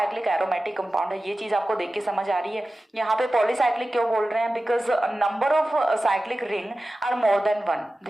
एरोमेटिक कंपाउंड है। ये चीज आपको देख के समझ आ रही है। यहाँ पे पॉलीसाइक्लिक क्यों बोल रहे हैं? Because number of cyclic ring are more than one,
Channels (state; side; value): normal; both; correlation 0.95